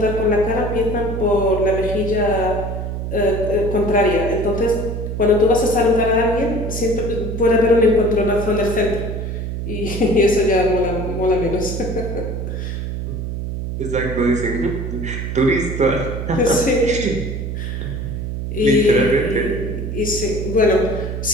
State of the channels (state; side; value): noise; right; hum, 4 dB below the sound